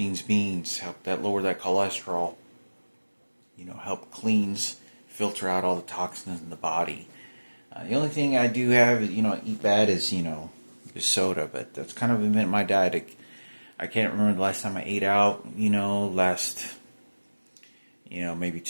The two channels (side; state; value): both; inverted; correlation -1.00